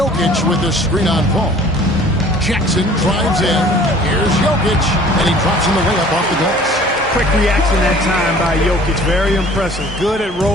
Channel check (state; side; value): normal; both; correlation 0.50